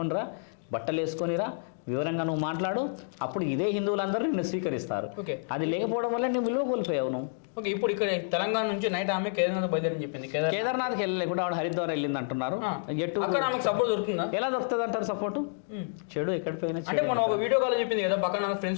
బట్టలు వేసుకొనిరా, వివరంగా నువ్వు మాట్లాడు, అప్పుడు ఇదే హిందువులందరూ నిన్ను స్వీకరిస్తారు. అది లేకపోవడం వల్ల నువ్వు విలువ కోల్పోయావు నువ్వు. ఓకే, ఇప్పుడు ఇక్కడ తెలంగాణ నుంచి నైట్ ఆమె కేదార్నాథ్ బయలుదేరని చెప్పింది. కేదార్నాథ్కి వెళ్ళలేకుండా ఆవిడ హరిద్వార్ వెళ్ళింది అంటున్నారు. సపోర్ట్ దొరుకుతుందా? ఎలా దొరుకుతుంది అంటారు సపోర్ట్? చెడు ఎక్కడ పోయినా అంటే మనం ఒక వీడియో కాల్ చెప్పింది కదా, పక్కన నా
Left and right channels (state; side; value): silent; right; digital silence